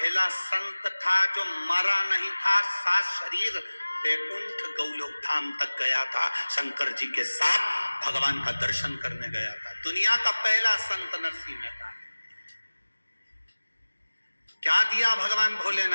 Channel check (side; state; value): both; inverted; correlation -1.00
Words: संत था जो मरा नहीं था, सात शरीर वैकुंठ गौलोक धाम तक गया था, शंकर जी के साथ भगवान का दर्शन करने गया था। दुनिया का पहला संत नरसिंह मेहता। क्या दिया भगवान